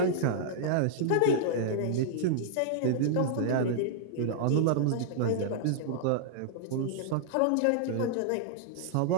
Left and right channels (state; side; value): different; both; correlation -0.01